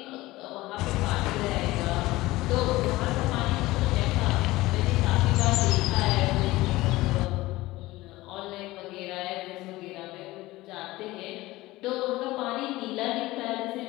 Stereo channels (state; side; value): quieter; right; 18.7 dB